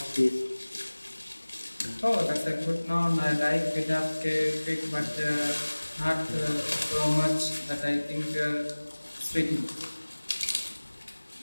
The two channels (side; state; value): both; inverted; correlation -1.00